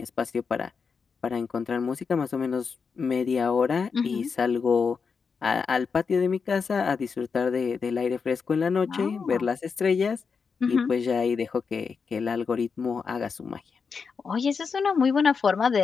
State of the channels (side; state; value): right; quieter; 5.5 dB